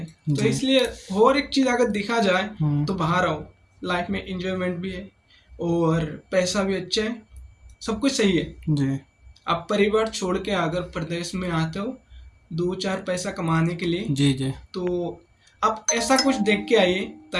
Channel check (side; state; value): both; identical; correlation 1.00